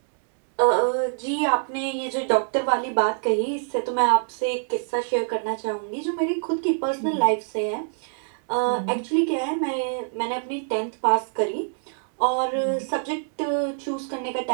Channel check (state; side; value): silent; left; digital silence